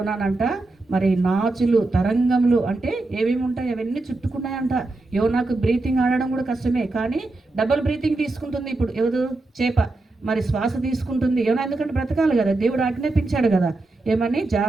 మరి నాచులు తరంగములు అంటే ఏమేమి ఉంటాయి అవన్నీ చుట్టుకున్నాయంట. యోనాకు బ్రీతింగ్ ఆడడం కూడా కష్టమే, కానీ డబుల్ బ్రీతింగ్ తీసుకుంటుంది ఇప్పుడు ఎవరు? చేప మరి శ్వాస తీసుకుంటుంది. యోనా ఎందుకంటే బ్రతకాలి కదా, దేవుడు ఆజ్ఞాపించాడు కదా ఏమని,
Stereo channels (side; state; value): left; quieter; 3.1 dB